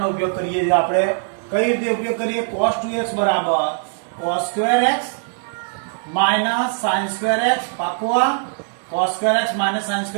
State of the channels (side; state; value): left; silent; 65 dB below the other